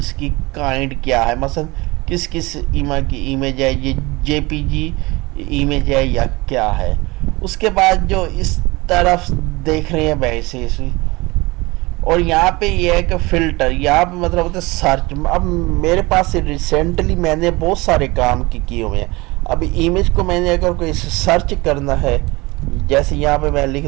کی کائنڈ کیا ہے, مثلا کس ایمیج ہے, یہ جے پی جی ایمیج ہے یا کیا ہے. اس کے بعد جو اس طرف دیکھ رہے ہیں ویسے, اور یہاں پہ یہ ہے کہ فلٹر, یہاں پہ مطلب ہوتا ہے سرچ. اب میرے پاس ریسنٹلی میں نے بہت سارے کام کیے ہوئے ہیں. اب ایمیج کو میں نے اگر کوئی سرچ کرنا ہے, جیسے یہاں پہ میں لکھ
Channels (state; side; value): quieter; left; 22.9 dB